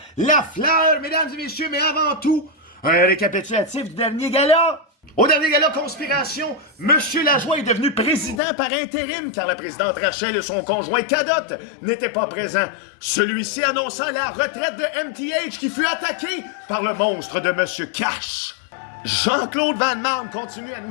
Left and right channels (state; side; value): drops out; right; at 8.4 s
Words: La Fleur, mesdames et messieurs, mais avant tout, un récapitulatif du dernier gala. Au dernier gala Conspiration, Monsieur Lajoie est devenu président par intérim car la présidente Rachel et son conjoint Cadotte n'étaient pas présents. Celui-ci annonçant la retraite de MTH qui fut attaqué par le monstre de Monsieur Cash. Jean-Claude Van Damme continue à